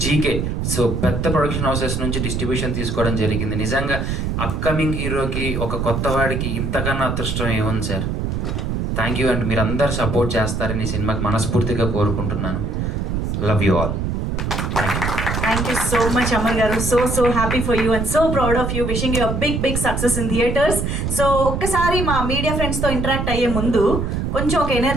జీకే. సో పెద్ద ప్రొడక్షన్ హౌసెస్ నుంచి డిస్ట్రిబ్యూషన్ తీసుకోవడం జరిగింది. నిజంగా అప్కమింగ్ హీరోకి, ఒక కొత్త వాడికి ఇంతకన్నా అదృష్టం ఏముంది సార్. Thank you. అండ్ మీరు అందరు సపోర్ట్ చేస్తారని ఈ సినిమాకి మనస్ఫూర్తిగా కోరుకుంటున్నాను. Love you all. Thank you so much, Amar garu. So happy for you and so proud of you. Wishing you a big success in theaters. So ఒక్కసారి మా media friends తో ఇంటరాక్ట్ అయ్యే ముందు కొంచెం ఒక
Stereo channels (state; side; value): noise; right; rumble, 1 dB below the sound